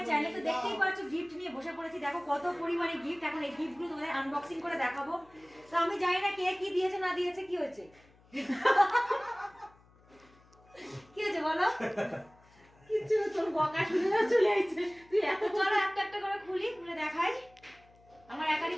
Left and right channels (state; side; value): noise; left; hum, 29 dB below the sound